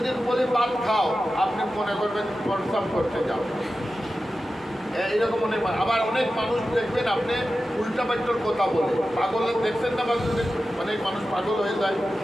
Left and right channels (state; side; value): normal; both; correlation 0.93